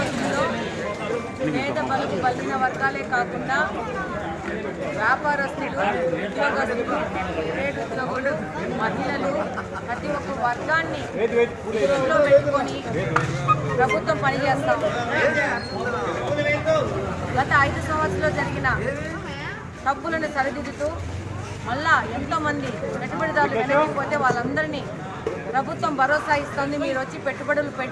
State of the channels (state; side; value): identical; both; correlation 1.00